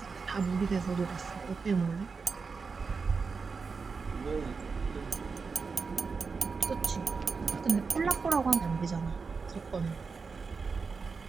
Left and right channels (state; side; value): quieter; left; 4.9 dB